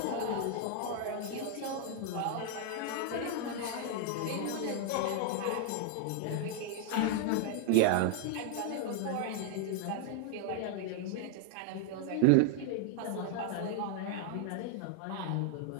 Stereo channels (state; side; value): different; both; correlation 0.00